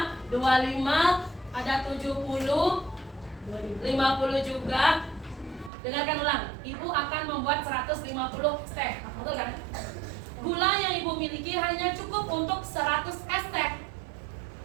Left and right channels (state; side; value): drops out; left; at 5.7 s